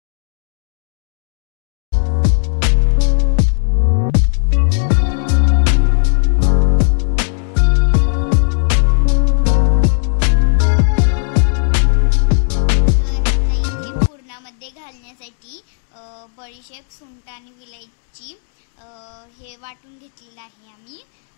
मध्ये घालण्यासाठी बडीशेप, सुंठ आणि विलायची हे वाटून घेतलेलं आहे आम्ही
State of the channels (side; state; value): right; silent; digital silence